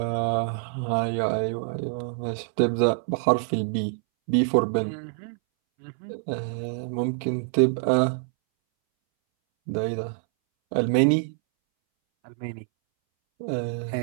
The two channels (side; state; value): left; silent; 61 dB below the other